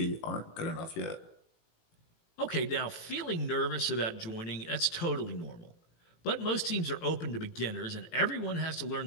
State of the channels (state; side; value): late; right; 18 ms